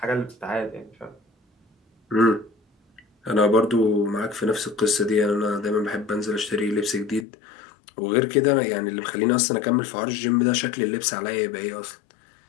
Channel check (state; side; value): drops out; right; at 7.2 s